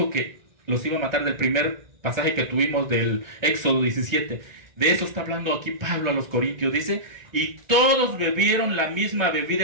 que los iba a matar, del primer pasaje que tuvimos del Éxodo 17. De eso está hablando aquí Pablo a los corintios. Dice, y todos bebieron la misma bebida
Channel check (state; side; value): late; left; 1.4 ms